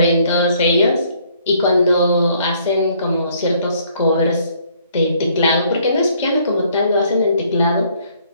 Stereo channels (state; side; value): inverted; both; correlation -0.64